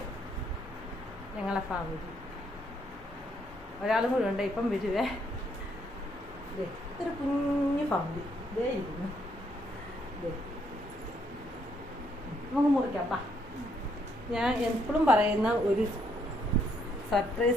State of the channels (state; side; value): normal; both; correlation 0.72